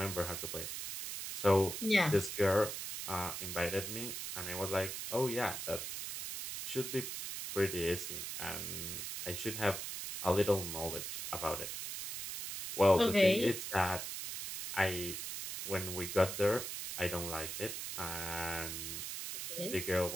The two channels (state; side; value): noise; right; hiss, 5 dB below the sound